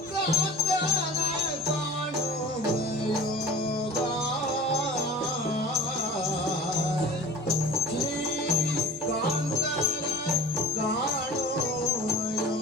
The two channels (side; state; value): both; normal; correlation 0.41